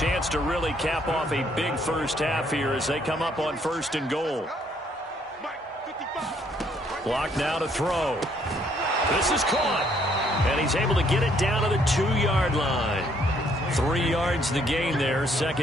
to really cap off a big first half here as they come up on 1st and goal. Clock now to throw. This is caught. And he's able to get it down to the 2-yard line. 3 yards the gain there,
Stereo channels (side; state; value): both; normal; correlation 0.67